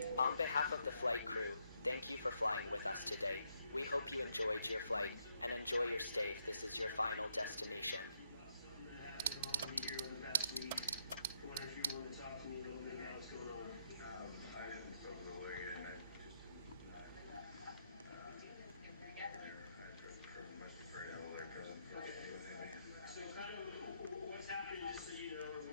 On behalf of the flight crew, thank you for flying with us today. We hope you enjoyed your flight and enjoy your stay if this is your final destination. So kind of what's happening, just so you know,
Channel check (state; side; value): inverted; both; correlation -0.77